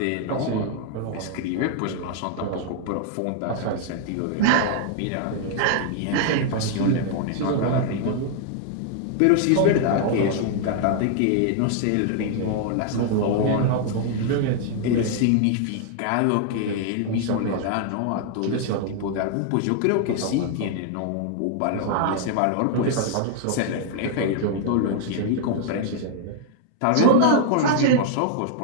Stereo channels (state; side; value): different; both; correlation 0.00